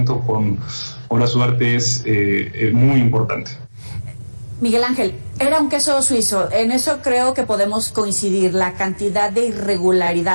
con Horacio Duarte es muy importante. Miguel Ángel, era un queso suizo, en eso creo que podemos coincidir, la cantidad de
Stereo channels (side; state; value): both; inverted; correlation -1.00